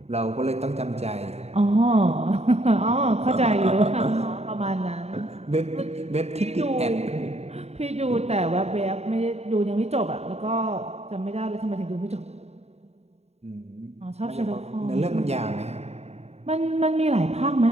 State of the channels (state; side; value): late; left; 0.31 ms